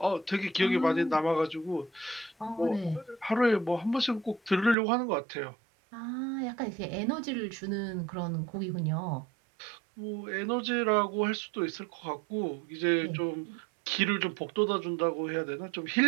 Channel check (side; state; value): left; drops out; at 4.8 s